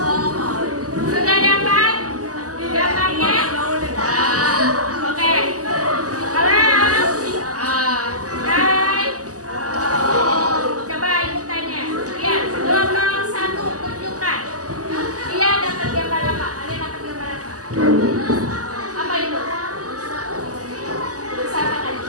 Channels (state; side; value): late; left; 0.67 ms